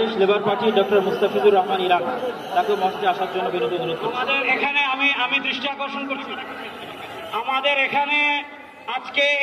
labour party doctor Mustafizur Rahman Iran, তাকে মঞ্চে আসার জন্য বিনীত অনুরোধ করছি। আমাদের এখানে আমি দৃষ্টি আকর্ষণ করছি, আমাদের এখানে আজকে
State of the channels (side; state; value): both; identical; correlation 1.00